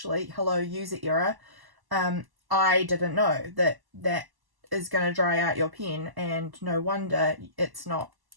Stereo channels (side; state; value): left; late; 1.0 ms